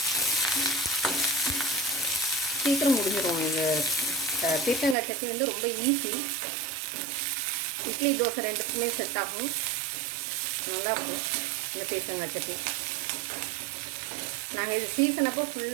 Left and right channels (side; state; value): left; drops out; at 5.0 s